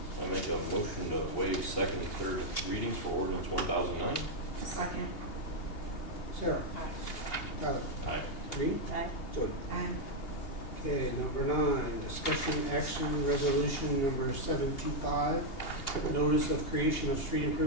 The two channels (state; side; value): late; right; 2.8 ms